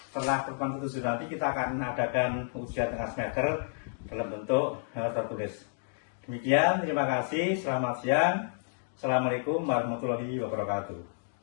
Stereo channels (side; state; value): right; silent; digital silence